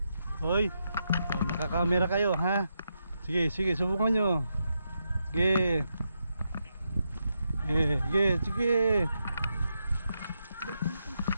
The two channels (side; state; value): both; inverted; correlation -0.84